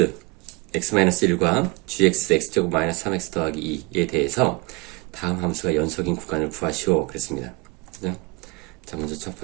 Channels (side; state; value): left; quieter; 27.2 dB